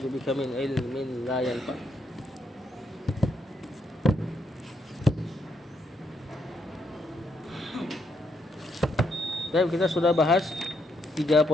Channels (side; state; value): both; normal; correlation 0.77